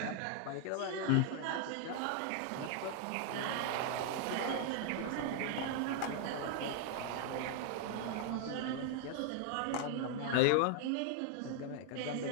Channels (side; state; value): both; different; correlation 0.00